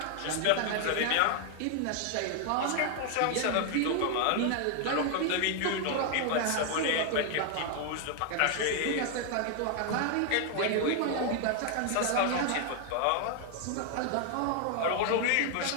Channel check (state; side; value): different; both; correlation 0.00